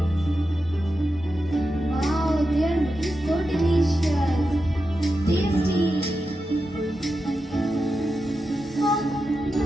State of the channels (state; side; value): normal; both; correlation 0.90